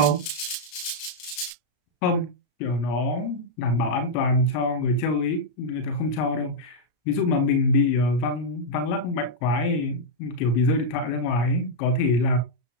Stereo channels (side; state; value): right; late; 33 ms